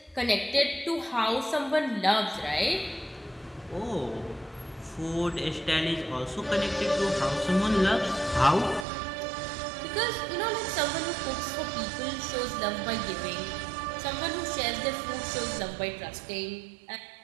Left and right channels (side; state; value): left; drops out; at 8.8 s